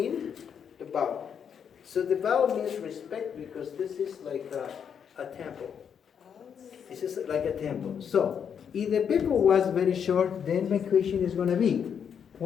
the bow. So the bow means respect, because this is like a temple. This is like a temple. So if the people was very short, then my question is going to be,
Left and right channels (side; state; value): right; quieter; 7.6 dB